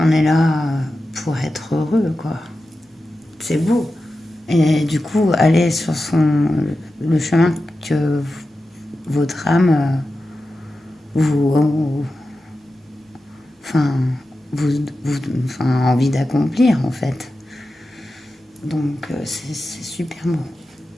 est là pour être heureux, quoi. C'est beau. Et du coup, aller sur le chemin que votre âme vous, enfin, enfin, a envie d'accomplir, en fait. Donc, c'est super beau.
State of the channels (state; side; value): normal; both; correlation 0.92